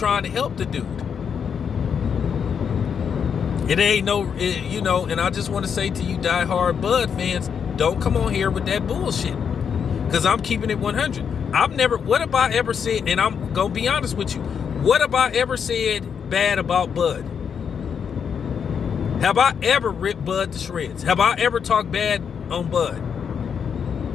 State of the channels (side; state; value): right; quieter; 7.1 dB